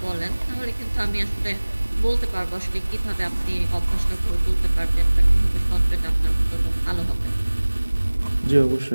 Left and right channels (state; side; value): inverted; both; correlation -1.00